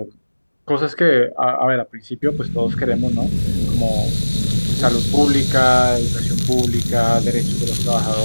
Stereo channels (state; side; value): inverted; both; correlation -1.00